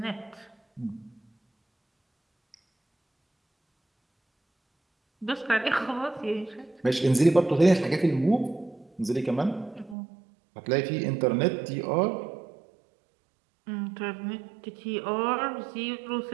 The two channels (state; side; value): drops out; left; at 10.0 s